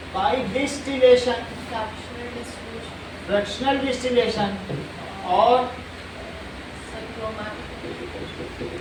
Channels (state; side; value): identical; both; correlation 1.00